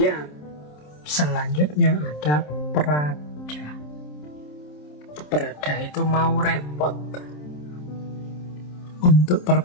Selanjutnya ada perada. Perada itu mau repot, untuk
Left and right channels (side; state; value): right; late; 27 ms